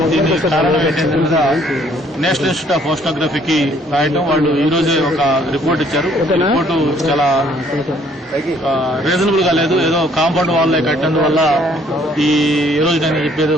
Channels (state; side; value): normal; both; correlation 0.63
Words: దీని కారణం ఏంటి దీని మీద నేషనల్ ఇన్స్టిట్యూట్ ఆఫ్ ఓషనోగ్రఫీకి రాయటం. వాళ్ళు ఈ రోజే ఒక రిపోర్ట్ ఇచ్చారు. రిపోర్టు చాలా రీజనబుల్ గా లేదు. ఏదో కాంపౌండ్ వాల్ కట్టినందువల్ల ఈ రోజు నేను చెప్పేది